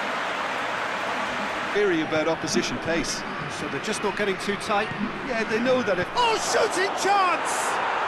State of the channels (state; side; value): identical; both; correlation 1.00